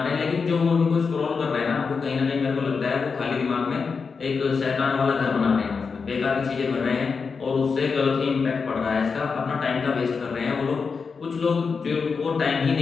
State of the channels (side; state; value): right; quieter; 5.2 dB